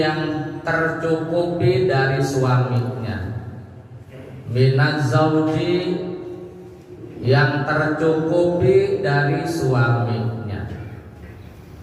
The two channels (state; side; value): identical; both; correlation 1.00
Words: tercukupi dari suaminya, minaz zauji yang tercukupi dari suaminya.